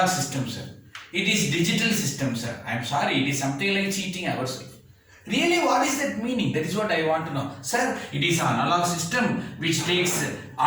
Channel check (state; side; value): identical; both; correlation 1.00